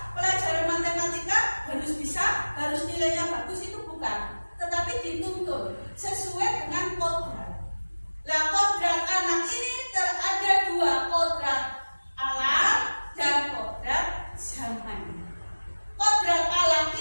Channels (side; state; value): both; inverted; correlation -1.00